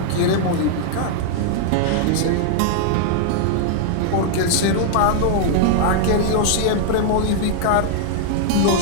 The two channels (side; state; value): both; different; correlation -0.01